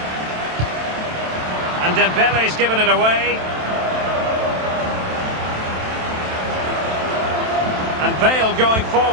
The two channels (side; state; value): left; late; 27 ms